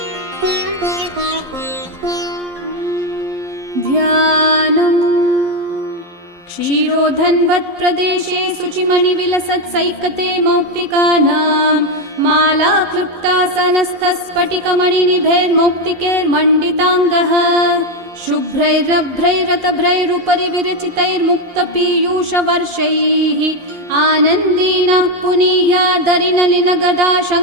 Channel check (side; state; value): left; late; 11 ms